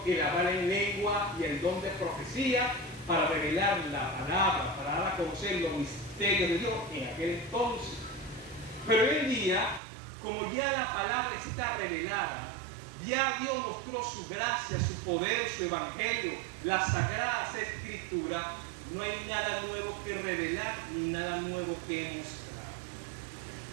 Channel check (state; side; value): drops out; left; at 9.8 s